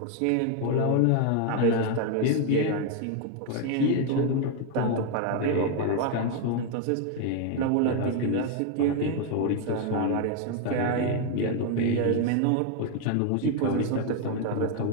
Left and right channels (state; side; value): different; both; correlation 0.01